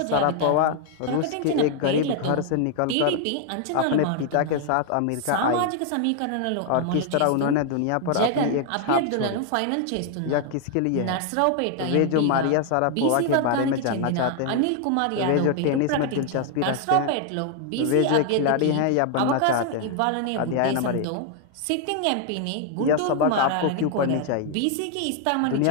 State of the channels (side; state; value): both; different; correlation 0.00